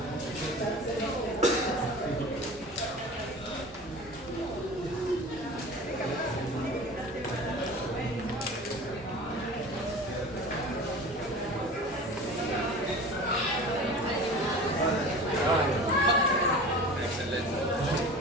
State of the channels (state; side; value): normal; both; correlation 0.38